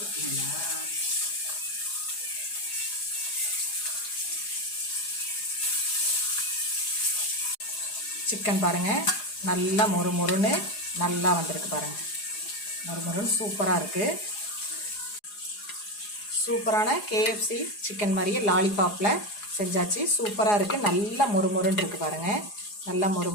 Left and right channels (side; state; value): right; late; 4.8 ms